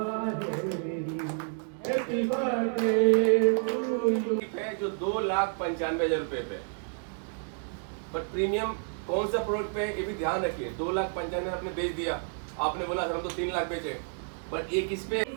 जो 2,95,000 रुपए पे, पर प्रीमियम कौन सा प्रोडक्ट पे है ये भी ध्यान रखिए. 2,95,000 आपने बेच दिया, आपने बोला सर हम तो 3 लाख बेचे, पर एक इस पे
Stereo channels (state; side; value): silent; left; 58 dB below the other